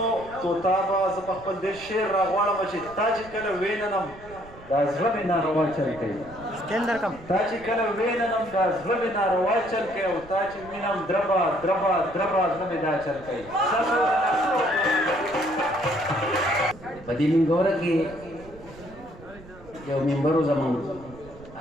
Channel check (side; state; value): right; noise; rumble, 19 dB below the sound